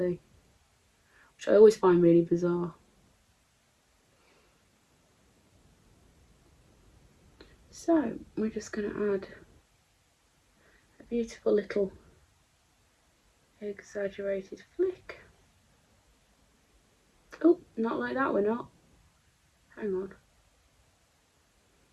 which I always find really bizarre. So we're just going to add a beautiful little exaggerated flick. Oh, not like that, we're not. Hang on.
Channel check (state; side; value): identical; both; correlation 1.00